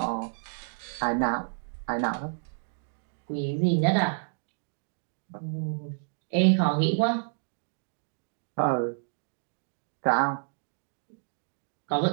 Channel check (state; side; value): silent; left; digital silence